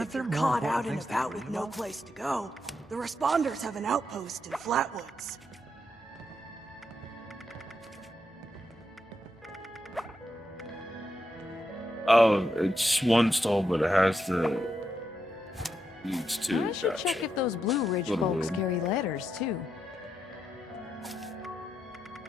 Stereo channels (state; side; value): normal; both; correlation 0.83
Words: If there you're more caught important out and things to about worry with no about? place to go, the responders have an outpost in Flatwoods. Oh, it's one stall, but it has the leads to. I should check if those Blue Ridge Little folks weird. carry letters, too.